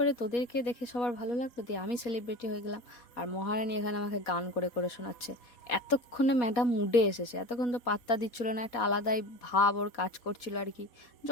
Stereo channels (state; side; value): late; right; 4.2 ms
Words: তোদেরকে দেখে সবার ভালো লাগলো, দিয়ে আমি সেলিব্রিটি হয়ে গেলাম। আর মহারানী এখানে আমাকে গান করে করে শোনাচ্ছে। এতক্ষণে ম্যাডাম মুডে এসেছে, এতক্ষণ তো পাত্তা দিচ্ছিল না, একটা আলাদাই ভাব ওর কাজ করছিল আর কি।